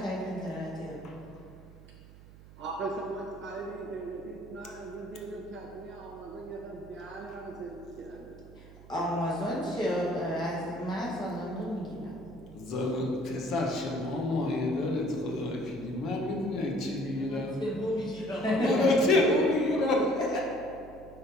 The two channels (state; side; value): noise; right; hum, 19 dB below the sound